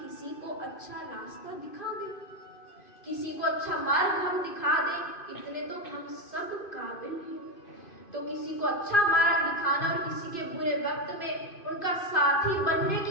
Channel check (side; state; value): right; late; 2.5 ms